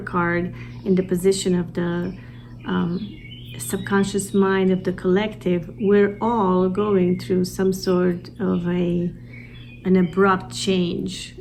in the position of the subconscious mind of the collective, we're all going through some sort of an abrupt change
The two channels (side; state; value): both; identical; correlation 1.00